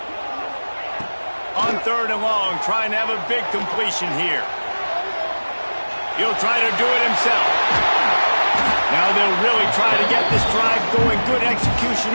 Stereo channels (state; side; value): inverted; both; correlation -1.00